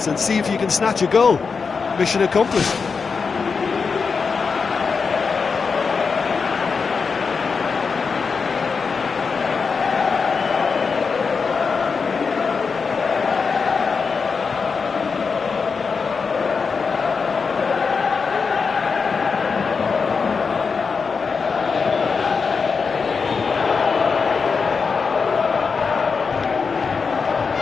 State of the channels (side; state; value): right; quieter; 5.2 dB